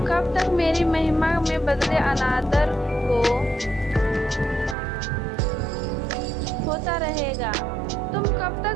कब तक मेरी महिमा में बदले अनादर को होता रहेगा? तुम कब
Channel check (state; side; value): drops out; left; at 4.8 s